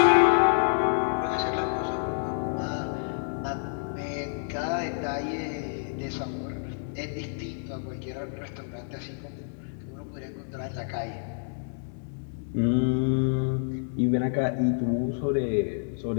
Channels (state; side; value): silent; right; digital silence